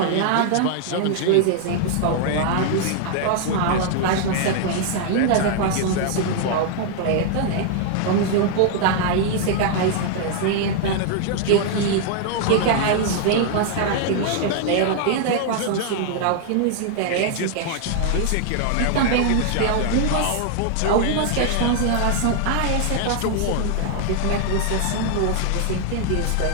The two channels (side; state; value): both; different; correlation 0.00